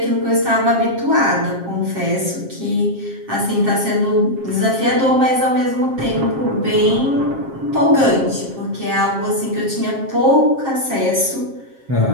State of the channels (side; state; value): left; late; 7.5 ms